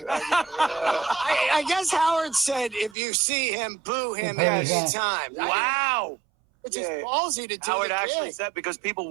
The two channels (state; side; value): drops out; left; at 3.0 s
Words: I guess Howard said if you see him, boo him Yeah, every yeah. time. Wow. It's just ballsy to do Howard the actually gig. said, because people